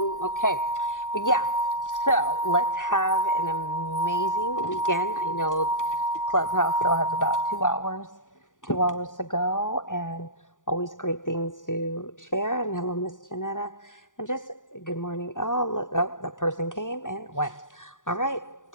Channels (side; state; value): right; late; 0.88 ms